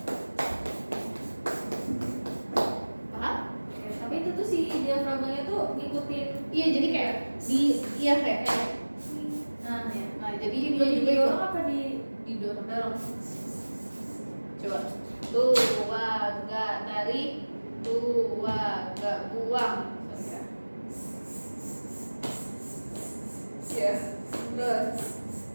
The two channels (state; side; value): inverted; both; correlation -1.00